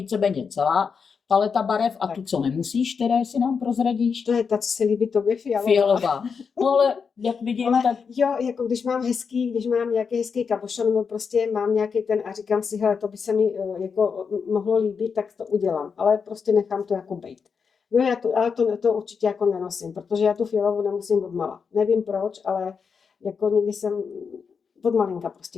celá paleta barev a Tak. tu, co nemusíš, které si nám prozradíš? To je ta, co se líbí tobě, fialová. Fialová. No ale jak vidím, Ale tak jo, jako když mám nějaký hezký kabošon, nebo prostě mám nějaký ten a říkám si, hele, to by se mi jako mohlo líbit, tak to udělám, ale prostě nechám to jako bejt. Jo, ale to určitě jako nenosím, protože já tu fialovou nemusím od mala. Nevím proč, ale jako nikdy jsem od malinka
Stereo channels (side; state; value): right; quieter; 5.9 dB